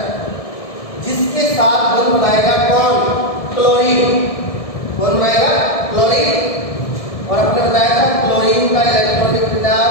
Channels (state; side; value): late; right; 1.7 ms